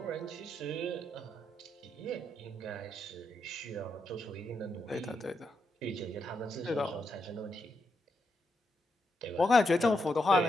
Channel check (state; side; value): normal; both; correlation 0.82